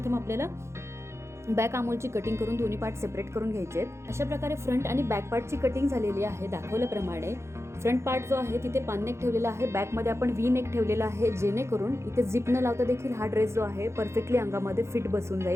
आपल्याला बॅक आर्महोलची कटिंग करून दोन्ही पार्ट सेपरेट करून घ्यायचे. अशा प्रकारे फ्रंट आणि बॅक पार्टची कटिंग झालेली आहे दाखवल्याप्रमाणे. फ्रंट पार्ट जो आहे तिथे पान नेक ठेवलेला आहे, बॅकमध्ये आपण व्ही नेक ठेवलेला आहे, जेणेकरून इथे झिप न लावता देखील हा ड्रेस जो आहे परफेक्टली अंगामध्ये फिट बसून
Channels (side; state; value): left; late; 0.13 ms